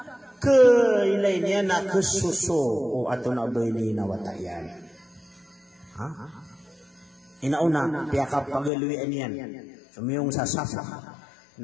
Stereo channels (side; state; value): right; drops out; at 8.7 s